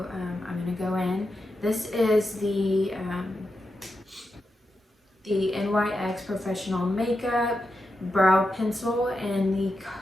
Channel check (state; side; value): normal; both; correlation 0.88